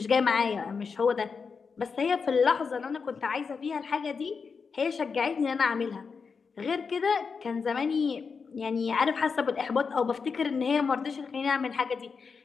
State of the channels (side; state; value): right; quieter; 5.4 dB